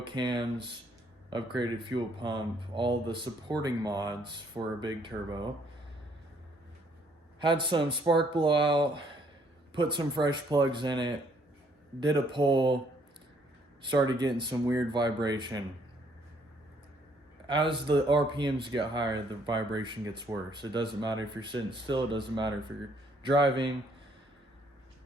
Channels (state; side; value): normal; both; correlation 0.66